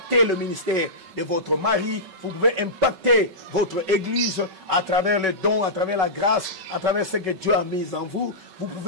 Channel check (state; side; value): late; left; 5.3 ms